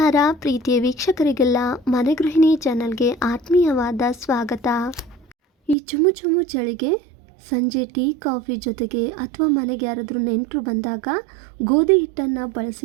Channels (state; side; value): drops out; left; at 5.8 s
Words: ಪ್ರೀತಿಯ ವೀಕ್ಷಕರಿಗೆಲ್ಲ ಮನೆಗೃಹಿಣಿ ಚಾನಲ್ಗೆ ಆತ್ಮೀಯವಾದ ಸ್ವಾಗತ. ಈ ಚುಮು ಚಳಿಗೆ ಸಂಜೆ ಟೀ ಕಾಫಿ ಜೊತೆಗೆ ಅಥವಾ ಮನೆಗೆ ಯಾರಾದರೂ ನೆಂಟರು ಬಂದಾಗ ಗೋಧಿ ಹಿಟ್ಟನ್ನು